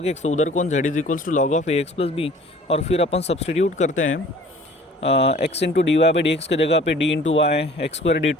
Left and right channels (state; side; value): normal; both; correlation 0.50